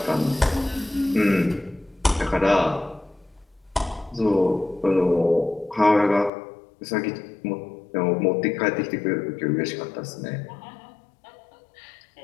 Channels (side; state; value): right; drops out; at 6.3 s